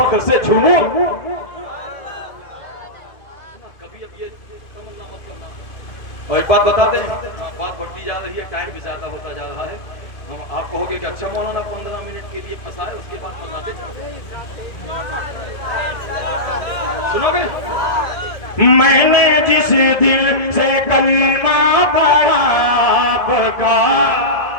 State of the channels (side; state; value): right; late; 1.7 ms